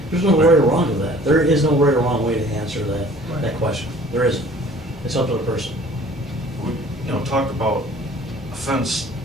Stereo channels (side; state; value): both; normal; correlation 0.51